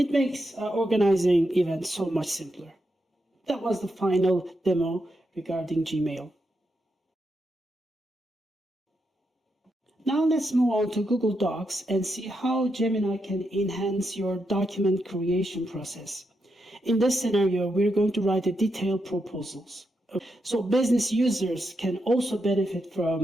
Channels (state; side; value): normal; both; correlation 0.84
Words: makes organizing events so much simpler. That was the final demo regarding Gmail. Now let's move on to Google Docs and see how Gemini can enhance your document creation process. In this scenario, we're going to write a detailed proposals. So business users can also benefit